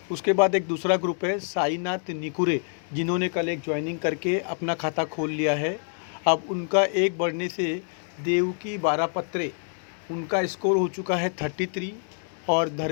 उसके बाद एक दूसरा ग्रुप है साईनाथ निकुरे, जिन्होंने कल एक ज्वाइनिंग करके अपना खाता खोल लिया है। अब उनका एक बढ़ने से देवकी बारापत्रे, उनका स्कोर हो चुका है 33। और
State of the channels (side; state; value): right; silent; 61 dB below the other